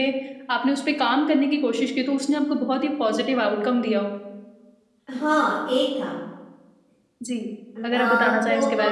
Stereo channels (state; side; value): identical; both; correlation 1.00